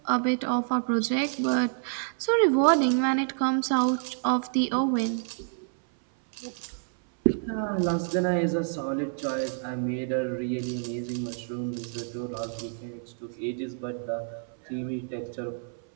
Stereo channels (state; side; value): silent; left; 59 dB below the other